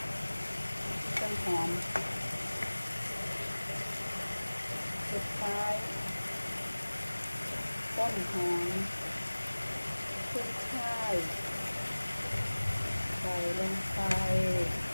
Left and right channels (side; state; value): both; inverted; correlation -1.00